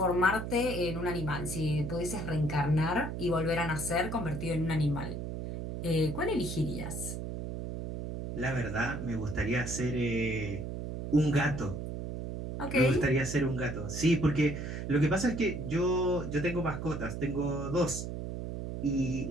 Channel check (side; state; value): right; noise; hum, 6 dB below the sound